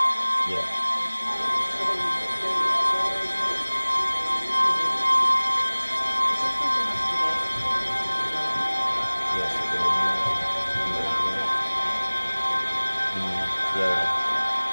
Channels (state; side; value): inverted; both; correlation -1.00